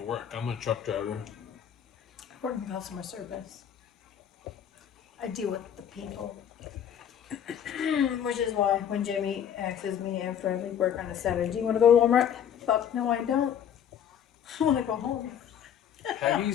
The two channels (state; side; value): quieter; right; 9.1 dB